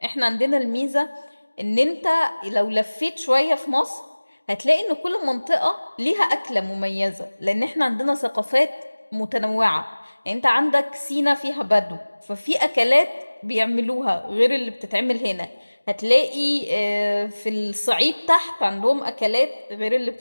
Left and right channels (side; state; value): both; inverted; correlation -1.00